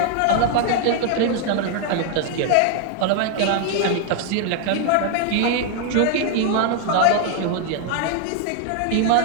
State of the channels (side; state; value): both; different; correlation 0.00